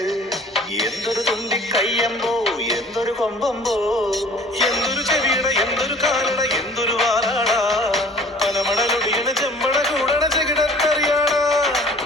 എന്തൊരു തുണ്ടി കയ്യമ്പോ എന്തൊരു കൊമ്പമ്പോ എന്തൊരു ചെവിയട എന്തൊരു കാലട എന്തൊരു വാലാട. പനമടലൊടിയണ ചെമ്പട കൂടണ ചെകിടത്തറിയാട.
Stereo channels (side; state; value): both; normal; correlation 0.49